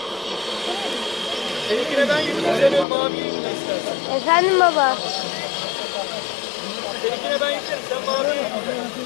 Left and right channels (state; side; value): drops out; right; at 2.9 s